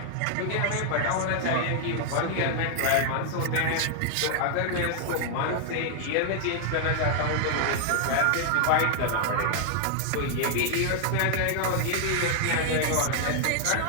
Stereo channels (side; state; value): both; different; correlation 0.00